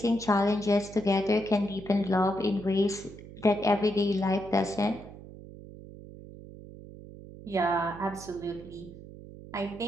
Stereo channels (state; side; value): noise; right; hum, 16 dB below the sound